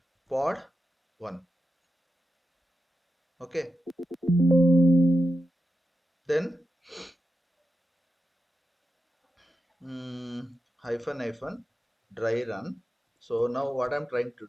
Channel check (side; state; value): both; normal; correlation 0.89